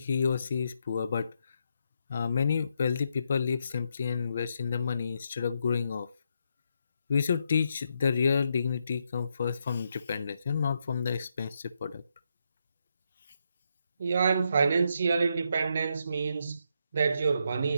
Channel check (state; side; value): inverted; both; correlation -0.80